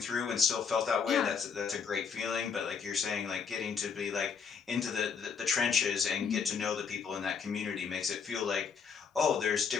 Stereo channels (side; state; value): right; quieter; 6.1 dB